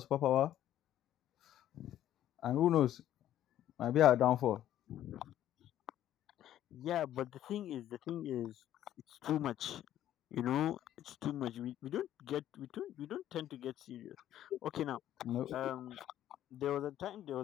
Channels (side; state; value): right; quieter; 12.0 dB